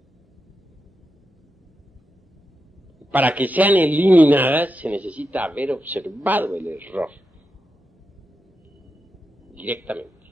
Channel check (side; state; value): both; normal; correlation 0.88